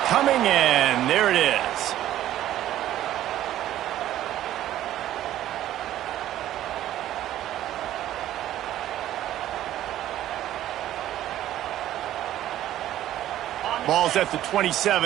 coming in. There it is. Ball's at the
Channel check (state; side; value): quieter; left; 12.9 dB